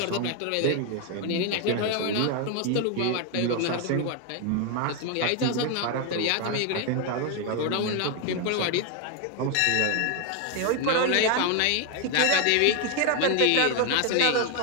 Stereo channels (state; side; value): different; both; correlation 0.01